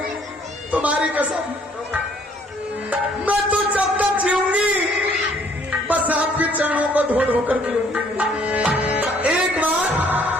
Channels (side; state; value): both; normal; correlation 0.62